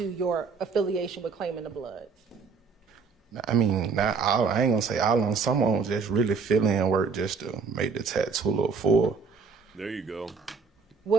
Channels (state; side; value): quieter; left; 5.2 dB